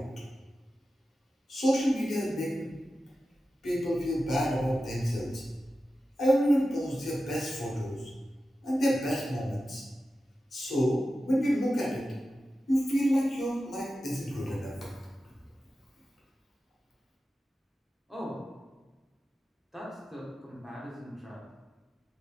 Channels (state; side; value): normal; both; correlation 0.93